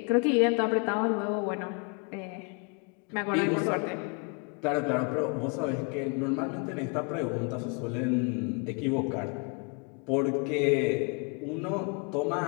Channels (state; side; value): quieter; right; 35.3 dB